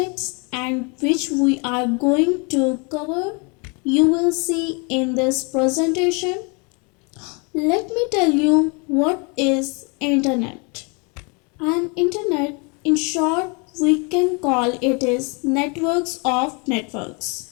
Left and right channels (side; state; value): right; quieter; 32.5 dB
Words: and which we are going to cover. You will see in this presentation. Let me tell you what is internet. An internet, in short, we can call it is networks of